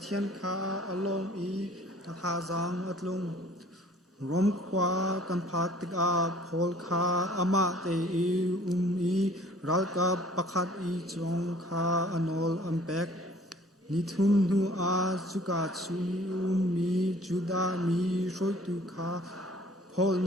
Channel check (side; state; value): both; normal; correlation 0.53